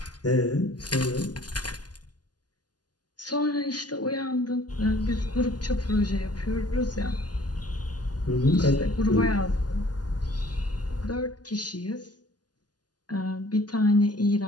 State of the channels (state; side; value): late; right; 0.69 ms